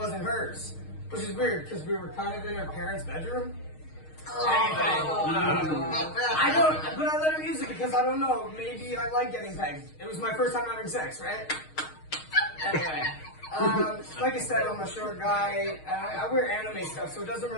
hers. Which is weird, because we were kind of in her parents' bedroom. I don't, but I let her use it because I don't know. Maybe I like getting pegged. It was my first time having sex, right? Anyway. Like I said, I'm a short guy. I wear anime stuff, so it doesn't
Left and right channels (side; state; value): right; late; 6.4 ms